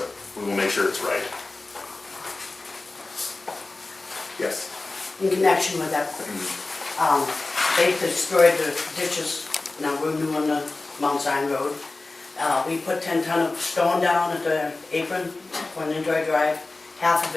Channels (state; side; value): quieter; right; 3.3 dB